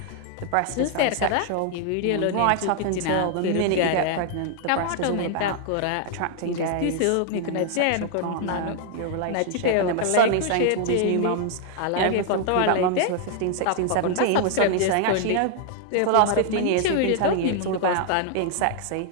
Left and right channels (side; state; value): both; different; correlation 0.00